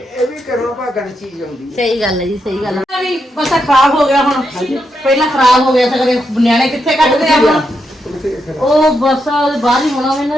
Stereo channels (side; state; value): both; normal; correlation 0.83